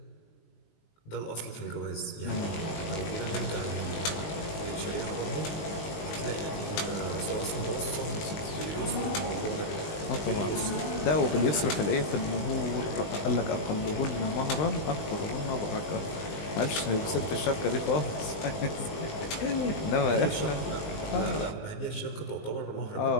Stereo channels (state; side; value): late; right; 20 ms